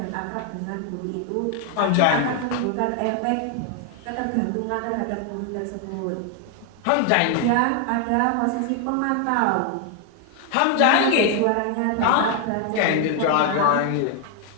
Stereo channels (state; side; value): different; both; correlation 0.01